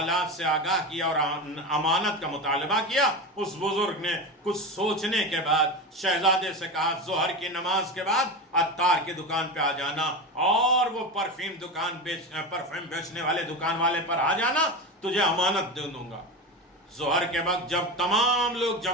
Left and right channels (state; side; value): normal; both; correlation 0.22